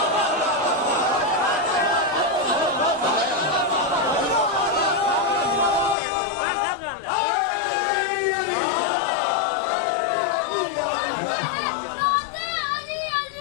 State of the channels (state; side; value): drops out; right; at 6.0 s